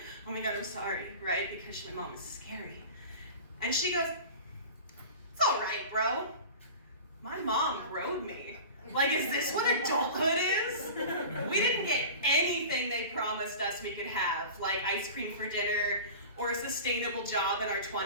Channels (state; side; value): inverted; both; correlation -0.35